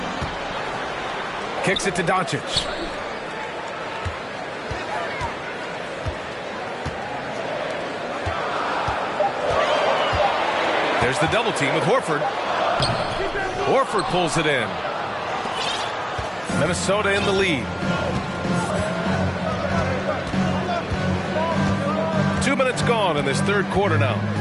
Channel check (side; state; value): both; identical; correlation 1.00